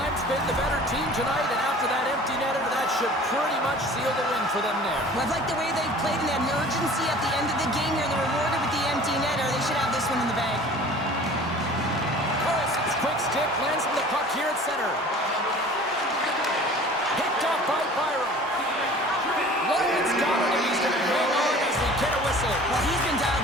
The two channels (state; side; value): normal; both; correlation 0.45